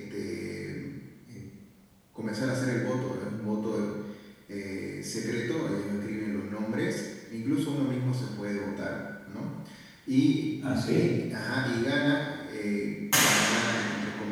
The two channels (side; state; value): both; identical; correlation 1.00